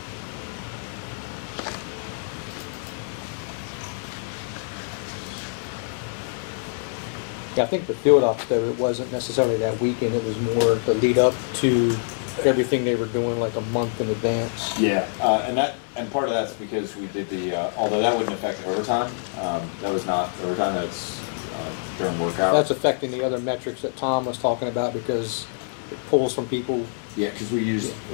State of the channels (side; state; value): right; silent; 61 dB below the other